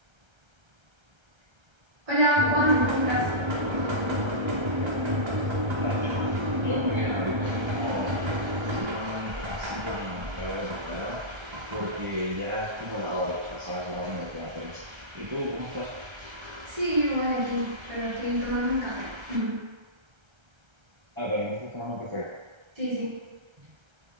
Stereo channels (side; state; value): left; late; 1.3 ms